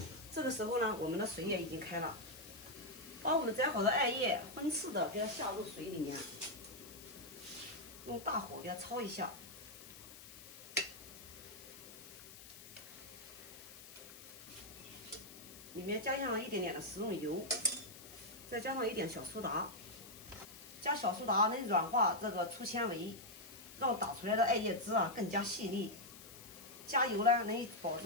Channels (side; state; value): left; noise; hiss, 16 dB below the sound